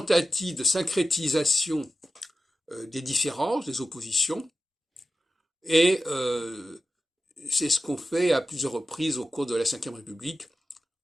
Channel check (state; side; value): normal; both; correlation 0.93